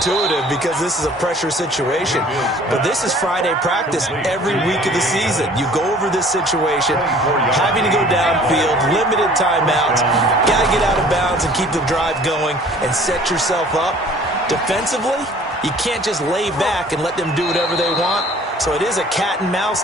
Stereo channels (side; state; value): both; normal; correlation 0.51